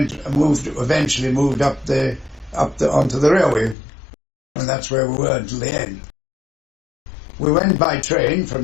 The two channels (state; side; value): drops out; right; at 3.8 s